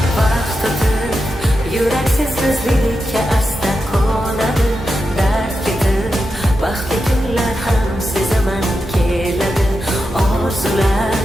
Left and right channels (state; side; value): normal; both; correlation 0.89